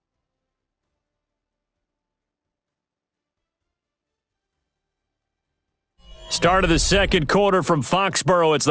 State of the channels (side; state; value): both; identical; correlation 1.00